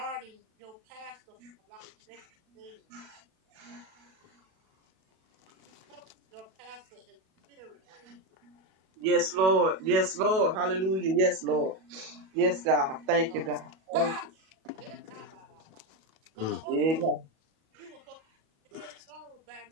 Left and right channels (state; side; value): late; left; 37 ms